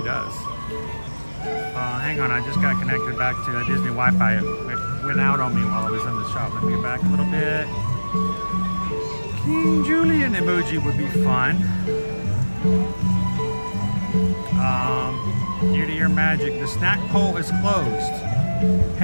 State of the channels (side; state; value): both; inverted; correlation -1.00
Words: does. Hang on, I just got connected back to Disney Wi-Fi. It went out on me while I was in the shop. Let me get back a little bit. King Julian emoji would be fun. Ear-to-ear magic. The snack pole is closed.